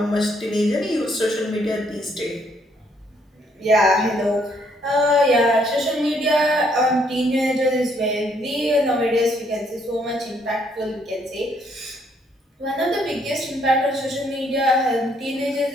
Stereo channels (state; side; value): normal; both; correlation 0.69